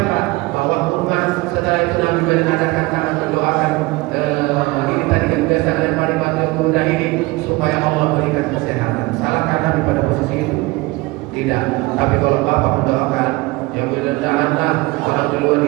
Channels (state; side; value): quieter; left; 22.4 dB